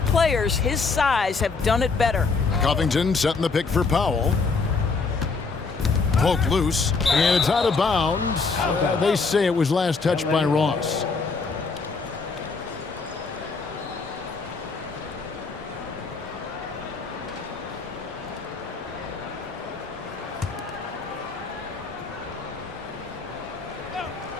players his size have done it better. Covington setting the pick for Powell. Poked loose, and it's out of bounds. They say it was last touched by Ross.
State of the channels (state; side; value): quieter; right; 4.4 dB